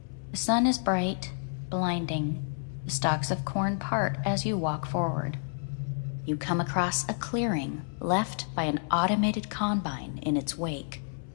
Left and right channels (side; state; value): right; silent; 58 dB below the other